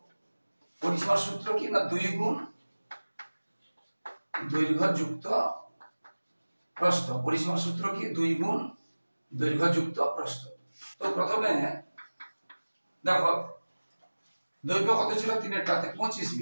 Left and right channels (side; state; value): both; inverted; correlation -1.00